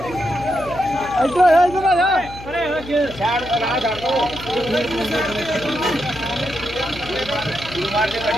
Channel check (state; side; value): noise; left; hum, 15 dB below the sound